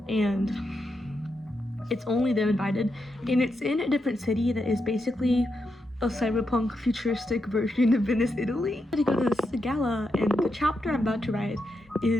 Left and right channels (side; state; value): both; normal; correlation 0.84